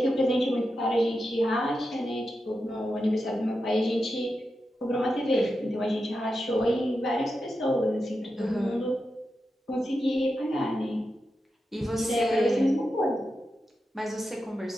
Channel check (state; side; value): normal; both; correlation 0.89